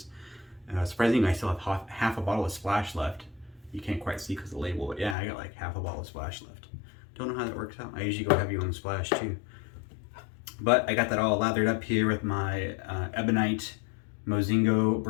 Surprisingly, I still have half a bottle of Splash left. You can't quite see because of the label, but yeah, I got like half a bottle of Splash left. Don't know how that works out. I usually go heavy on Splash too. But I got that all lathered up here with my Ebonite Mozingo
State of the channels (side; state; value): right; drops out; at 5.2 s